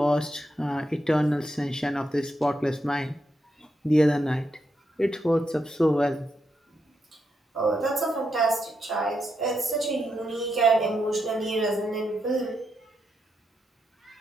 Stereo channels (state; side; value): normal; both; correlation 0.83